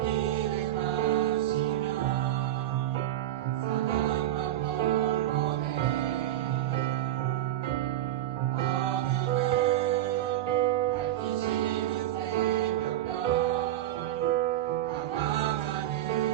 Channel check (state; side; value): quieter; left; 13.2 dB